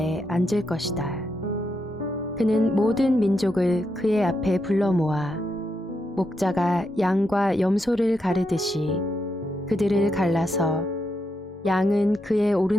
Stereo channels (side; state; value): both; normal; correlation 0.82